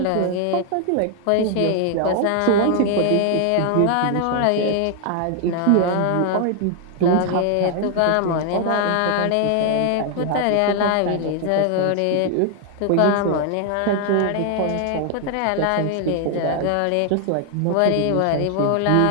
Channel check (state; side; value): different; both; correlation 0.00